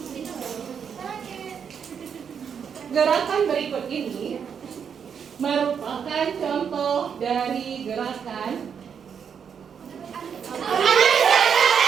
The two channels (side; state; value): left; quieter; 7.2 dB